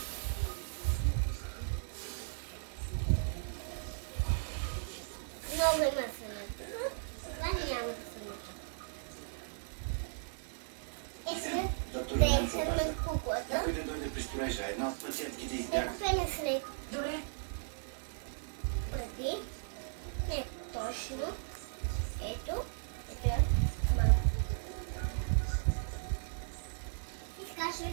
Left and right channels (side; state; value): left; silent; digital silence